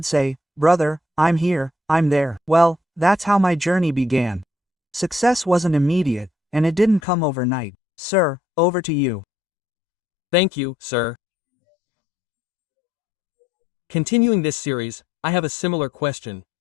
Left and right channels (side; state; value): right; drops out; at 7.0 s